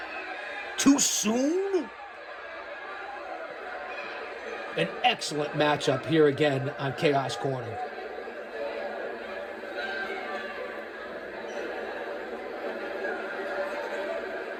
Too soon? An excellent matchup here again on Chaos Corner.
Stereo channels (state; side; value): identical; both; correlation 1.00